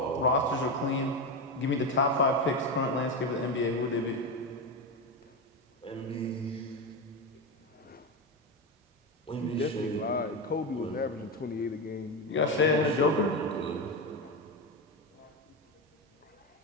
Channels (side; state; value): both; normal; correlation 0.15